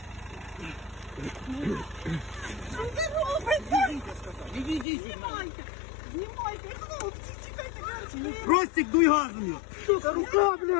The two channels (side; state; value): right; drops out; at 4.9 s